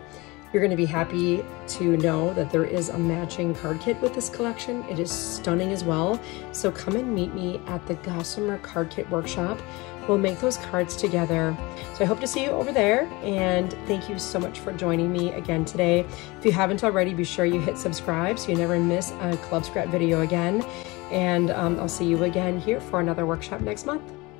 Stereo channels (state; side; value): quieter; right; 23.6 dB